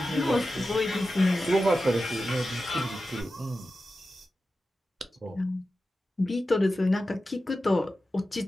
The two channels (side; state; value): both; normal; correlation 0.93